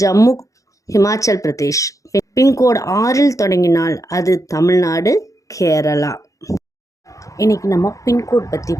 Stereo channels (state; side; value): late; right; 0.16 ms